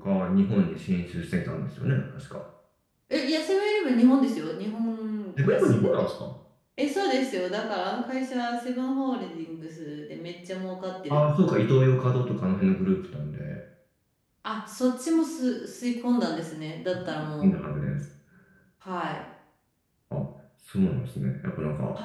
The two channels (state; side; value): identical; both; correlation 1.00